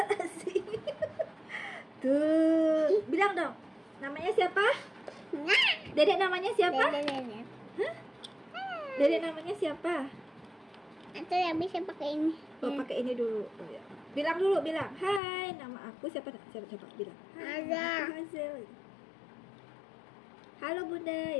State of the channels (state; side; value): drops out; right; at 15.2 s